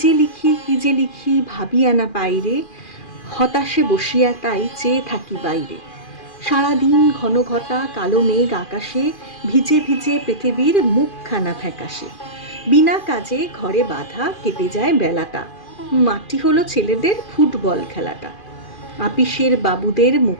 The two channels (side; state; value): right; late; 2.4 ms